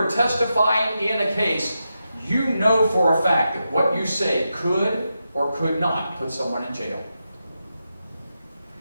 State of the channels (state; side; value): inverted; both; correlation -0.87